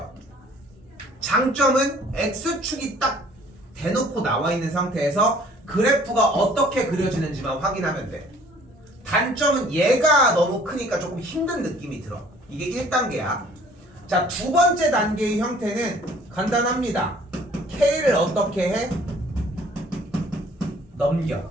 장점은 x축이 딱 대놓고 나와 있는 상태에서 그래프가 어떻게 그려지는지만 확인하면 돼. 단점은 얘가 너무 크니까 조금 힘든 느낌이 들어. 이게 1단계야. 자, 두 번째 단계의 형태는 간단합니다. k를 어떻게 해? 넘겨.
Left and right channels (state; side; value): normal; both; correlation 0.55